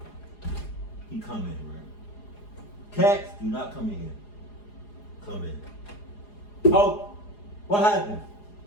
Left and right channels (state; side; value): late; right; 4.8 ms